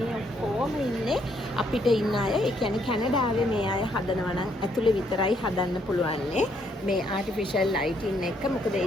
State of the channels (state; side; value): normal; both; correlation 0.71